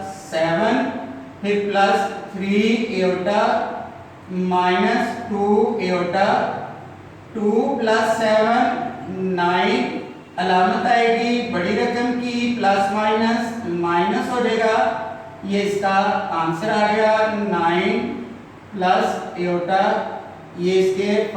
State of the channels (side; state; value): both; identical; correlation 1.00